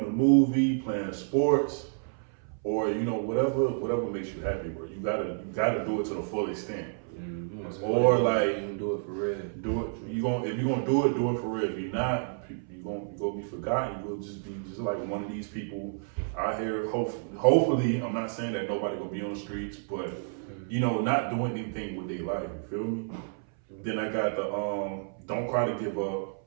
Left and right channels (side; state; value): left; silent; 58 dB below the other